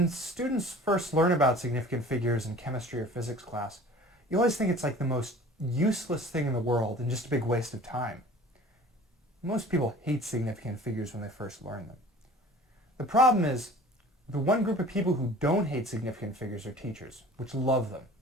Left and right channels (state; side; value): normal; both; correlation 0.45